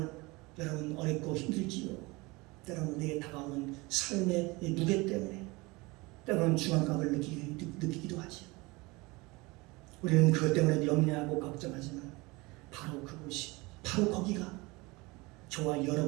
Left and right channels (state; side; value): quieter; left; 24.0 dB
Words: 여러분 어렵고 힘들지요. 때로는 내게 다가오는 삶의 무게 때문에 때로는 중압감을 느끼기도 하지요. 우리는 그것 때문에 염려하고 걱정하지만 바로 그곳이 바로 거기가 저와